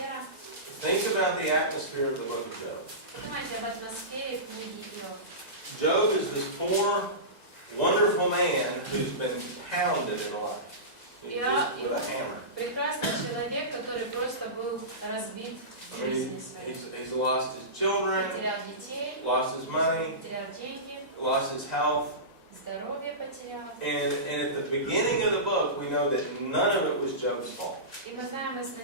think about the atmosphere of the book of Job. подумайте об атмосфере книги Иова. Job is this poor, wonderful man who's been pounded in life. Just with a hammer. Прекрасный человек, который просто был разбит в жизни своей. He's lost his children, Потерял детей, lost his money, потерял деньги, lost his health. здоровье потерял. And at the beginning of the book, we know that none of it was Job's fault. И мы знаем из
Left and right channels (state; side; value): late; right; 1.9 ms